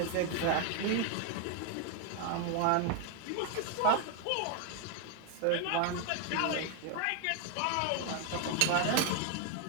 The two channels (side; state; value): both; different; correlation 0.00